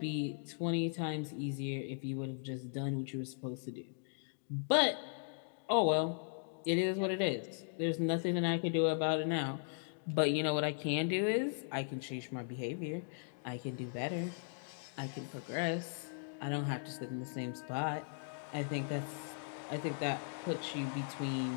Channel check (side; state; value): right; silent; digital silence